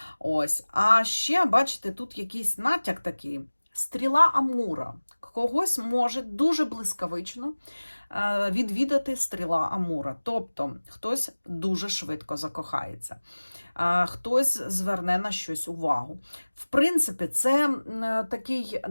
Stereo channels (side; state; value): both; inverted; correlation -1.00